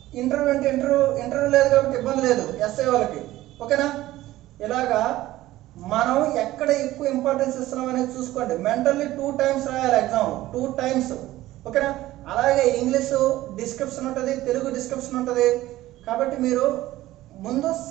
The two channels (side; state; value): left; quieter; 16.0 dB